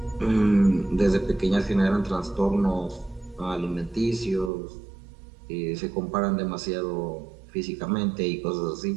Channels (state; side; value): drops out; left; at 4.5 s